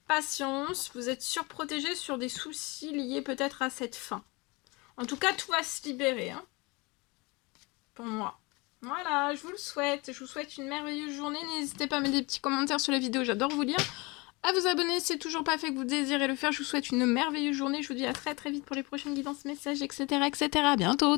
Patience, vous êtes surprotégé sur des soucis liés peut-être à cette fin. En tout cas, tout va se libérer, hein, pour moi. Voilà, je vous le souhaite. Je vous souhaite une merveilleuse journée. N'hésitez pas à mettre des petits commentaires sur la vidéo, j'adore vous lire. À vous abonner si c'est toujours pas fait que vous désirez le faire. Je vous souhaite une merveilleuse journée. Je vous dis à très vite pour les prochaines guidances, messages, etc. À bientôt,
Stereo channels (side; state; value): right; quieter; 26.1 dB